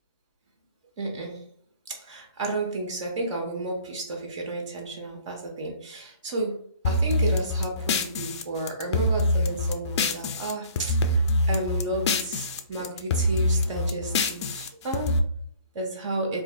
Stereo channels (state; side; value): inverted; both; correlation -0.53